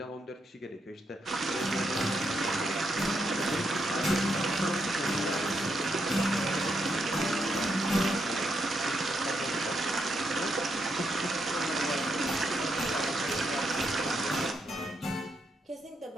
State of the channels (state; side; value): normal; both; correlation 0.80